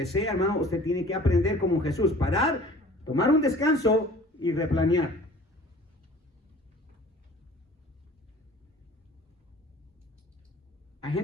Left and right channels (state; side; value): normal; both; correlation 0.47